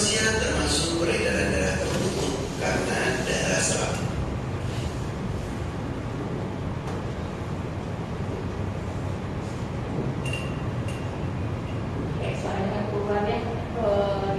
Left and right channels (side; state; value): both; identical; correlation 1.00